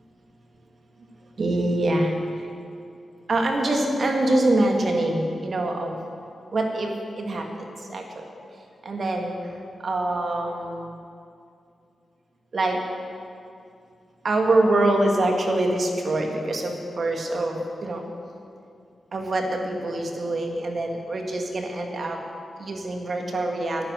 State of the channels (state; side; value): normal; both; correlation 0.90